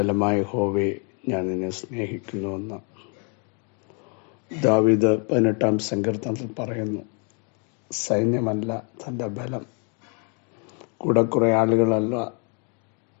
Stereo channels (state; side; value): quieter; right; 37.8 dB